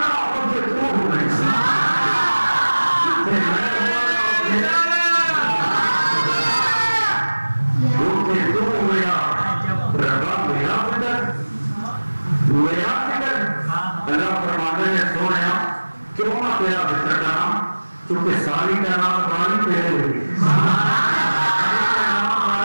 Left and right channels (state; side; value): inverted; both; correlation -1.00